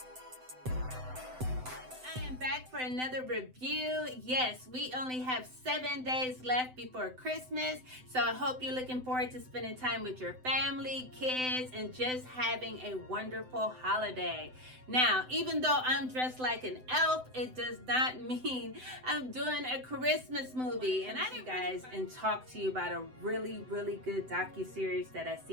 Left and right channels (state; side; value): late; left; 7.9 ms